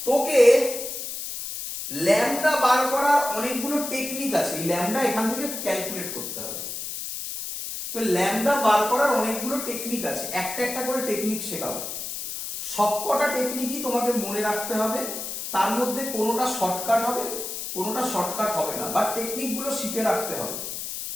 তোকে ল্যামডা বার করার অনেকগুলো টেকনিক আছে, এই ল্যামডা এখান থেকে ক্যালকুলেট করতে হবে। তো ল্যামডা বার করার অনেকগুলো টেকনিক আছে, একটা একটা করে টেকনিক শেখাবো। সবকটা টেকনিকই তোমাকে মনে রাখতে হবে, তার মধ্যে কোনোটা শর্টকাট হবে, কোনোটা শর্টকাট হবে না, বাট টেকনিকগুলো শিখে রাখতে হবে।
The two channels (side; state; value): left; noise; hiss, 6 dB below the sound